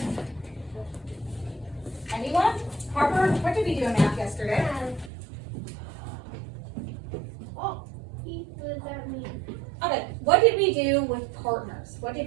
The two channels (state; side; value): drops out; left; at 5.1 s